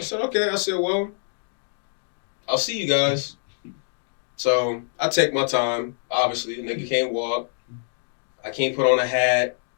said, okay. I said, well, I'll see you guys. So I take my time. Obviously, the nigga can't walk. I can't put on a hat.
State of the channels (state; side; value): silent; right; digital silence